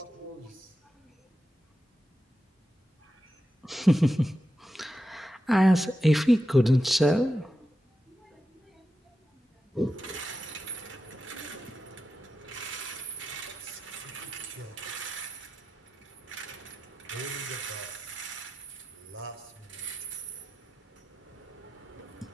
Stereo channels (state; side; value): normal; both; correlation 0.90